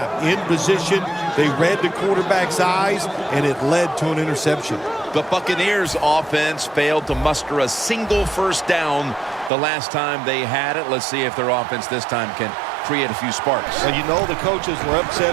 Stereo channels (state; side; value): drops out; left; at 9.5 s